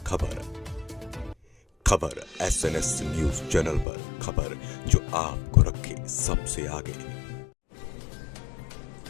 खबर SNS न्यूज चैनल पर, खबर जो आपको रखे सबसे आगे।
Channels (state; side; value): drops out; right; at 3.9 s